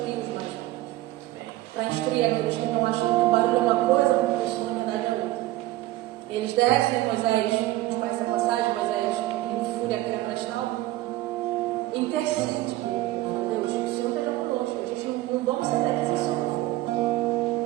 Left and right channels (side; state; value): left; quieter; 16.7 dB